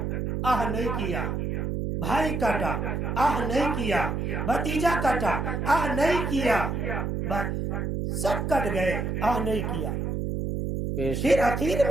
آہ نہیں کیا، بھائی کٹا، آہ نہیں کیا، بھتیجا کٹا، آہ نہیں کیا، سب کٹ گئے، آہ نہیں کیا۔ پھر آخر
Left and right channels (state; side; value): noise; right; hum, 1 dB below the sound